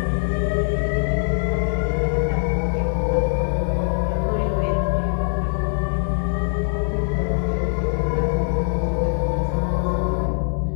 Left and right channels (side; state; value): right; silent; digital silence